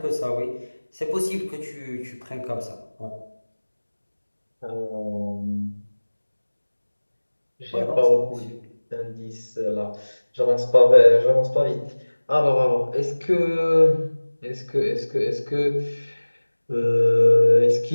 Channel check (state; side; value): inverted; both; correlation -1.00